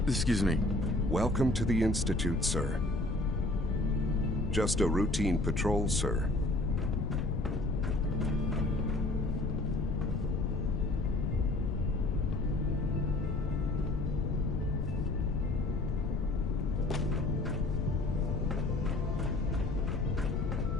Excuse me. Welcome to the Institute, sir. Just a routine patrol, sir.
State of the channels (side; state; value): left; noise; rumble, 1 dB below the sound